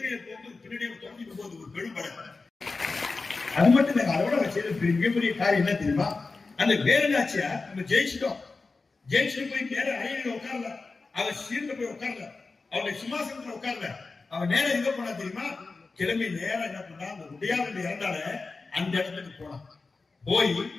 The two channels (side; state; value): right; quieter; 3.9 dB